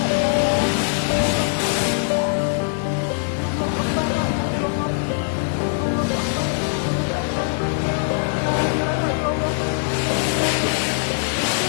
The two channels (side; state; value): right; silent; digital silence